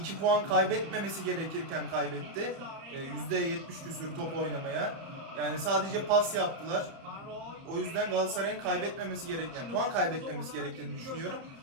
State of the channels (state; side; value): late; left; 30 ms